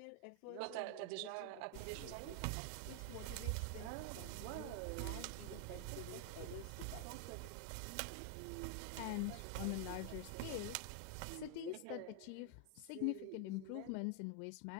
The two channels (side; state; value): both; different; correlation 0.00